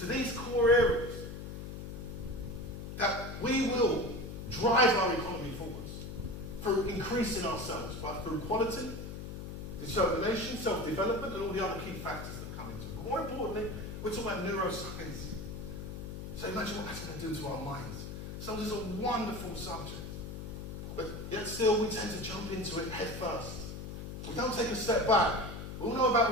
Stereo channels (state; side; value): noise; left; hum, 8 dB below the sound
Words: these core areas, that we will drive our economy forwards through increasing ourselves, through quality, determination, self-development, and all the other key factors that come into it. But more importantly, we're talking about neuroscience. So imagine what that's going to do to our minds. So this is a wonderful subject. But yet still we tend to jump into it head first. We don't take a step back. We all know about